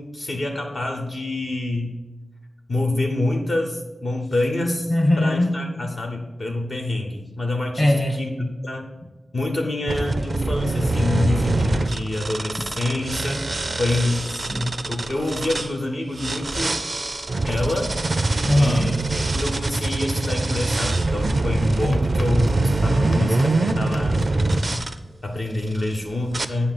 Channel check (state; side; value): normal; both; correlation 0.93